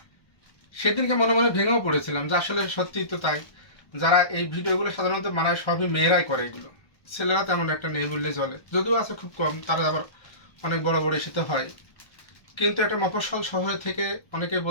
সেদিনকে মনে মনে ভেঙেও পড়েছিলাম যে আসলে সত্যিই তো তাই। যারা এই ভিডিওগুলো সাধারণত মানায় সবই মেয়েরাই করে এগুলো, ছেলেরা তেমন একটা নেই বললেই চলে, যদিও আছে খুব কম, তারা আবার অনেক বড় বড় ইস্যুতে হয়। কিন্তু একটা মফস্বল শহরে থেকে অনেকে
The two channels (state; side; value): late; right; 1.2 ms